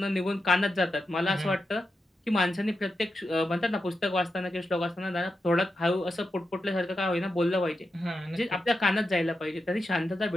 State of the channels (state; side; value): normal; both; correlation 0.88